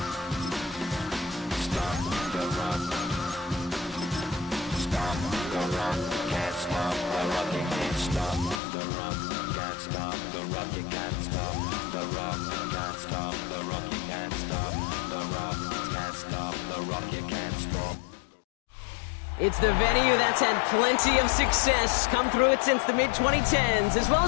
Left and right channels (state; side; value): drops out; right; at 8.6 s